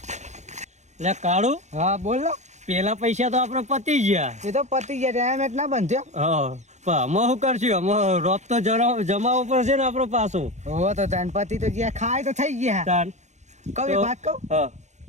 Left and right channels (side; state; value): left; late; 0.34 ms